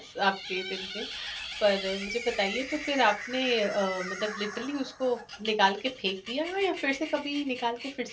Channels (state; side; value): identical; both; correlation 1.00